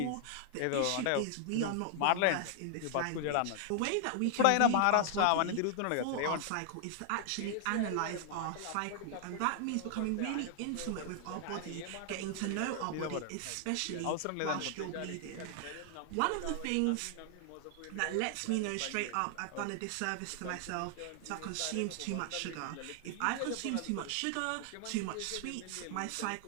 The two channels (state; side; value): different; both; correlation 0.00